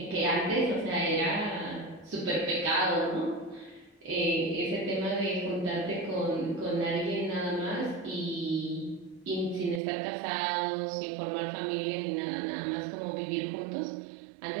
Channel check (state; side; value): drops out; left; at 9.8 s